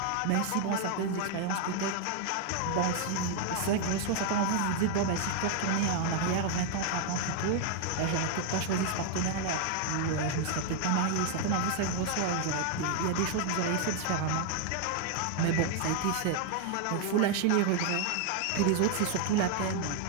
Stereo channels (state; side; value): different; both; correlation 0.00